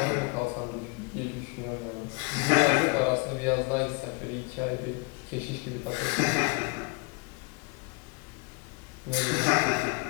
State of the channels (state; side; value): quieter; right; 29.3 dB